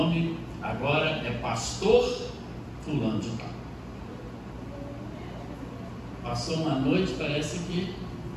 agora é pastor fulano de tal. Passou uma noite, parece que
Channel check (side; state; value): both; identical; correlation 1.00